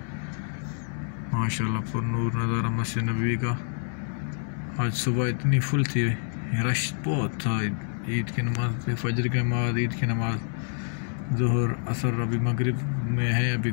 माशाल्लाह पर नूर नज़ारा मस्जिद नबवी का। आज सुबह इतनी फुल थी, रश बहुत था। ईद की नमाज, फजर की नमाज, ईद की नमाज, ज़ोहर, असर, अभी मगरिब में है अभी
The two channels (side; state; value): right; silent; digital silence